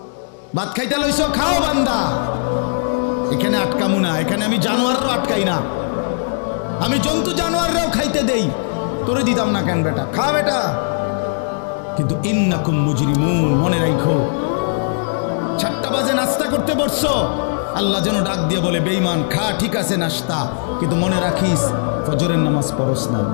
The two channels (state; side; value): silent; right; digital silence